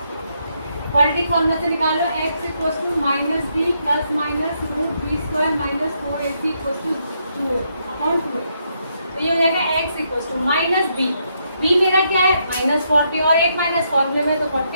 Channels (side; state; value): both; inverted; correlation -0.77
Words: क्वाड्रेटिक फॉर्मूला से निकाल लो, x equal to minus b plus minus root b square minus 4ac equal to 2 upon 2, तो ये हो जाएगा x equal to minus b, b मेरा क्या है माइनस 40 और एक माइनस फॉर्मूले में तो